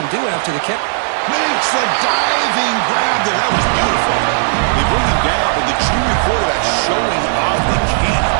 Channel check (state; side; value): silent; left; digital silence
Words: do after the catch. Makes the diving grab there. That was beautiful. They bring him down, but the junior quarterback showing off the cannon.